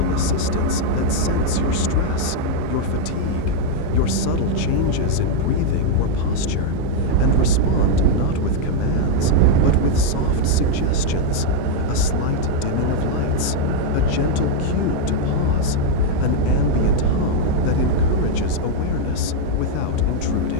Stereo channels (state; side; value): different; both; correlation 0.00